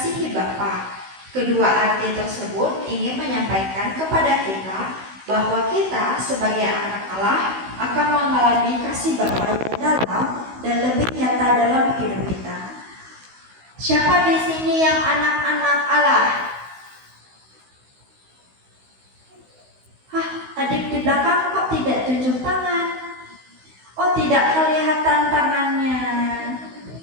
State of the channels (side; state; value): left; late; 16 ms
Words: Bapa. Kedua arti tersebut ingin menyampaikan kepada kita bahwa kita sebagai anak Allah akan mengalami kasih Bapa yang dalam dan lebih nyata dalam hidup kita. Siapa di sini yang anak-anak Allah? Adik di belakang kok tidak tunjuk tangan? Oh, tidak kelihatan tangannya.